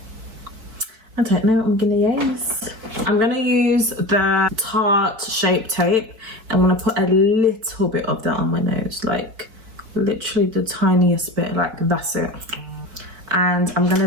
I don't know what I'm gonna use. I'm gonna use the Tarte Shape Tape. I'm gonna put a little bit of that on my nose, like literally the tiniest bit, like that's it. And I'm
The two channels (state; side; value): late; left; 4.7 ms